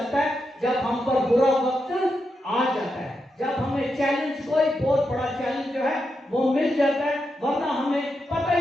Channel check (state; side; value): normal; both; correlation 0.85